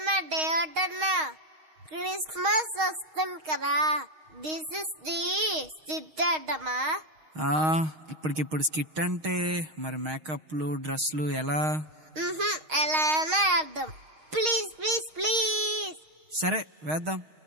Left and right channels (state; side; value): late; left; 6.4 ms